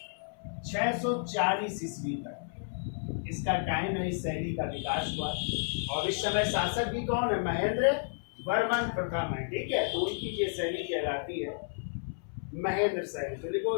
640 ईस्वी तक इसका टाइम है। इस शैली का विकास हुआ, और इस समय शासक भी कौन है? महेंद्र वर्मन प्रथम है। ठीक है, तो उनकी ये शैली कहलाती है महेंद्र शैली। तो देखो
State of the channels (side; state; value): right; silent; 57 dB below the other